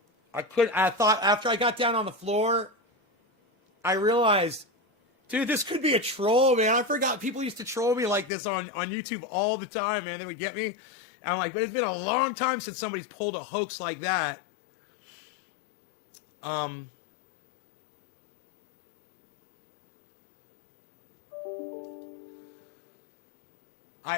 I thought after I got down on the floor, I realized, dude, this could be a troll, man. I forgot people used to troll me like this on YouTube all the time, man. They would get me. And I'm like, but it's been a long time since somebody's pulled a hoax like that.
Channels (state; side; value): drops out; right; at 8.3 s